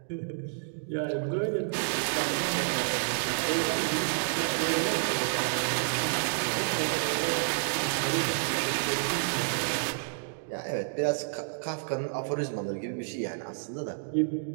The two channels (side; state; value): left; silent; digital silence